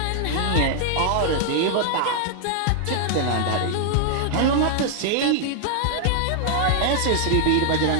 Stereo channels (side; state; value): both; different; correlation 0.00